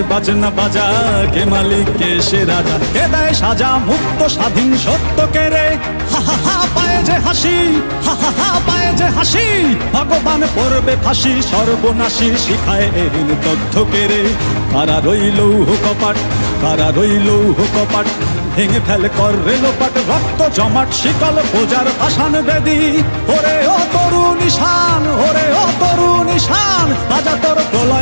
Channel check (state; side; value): inverted; both; correlation -1.00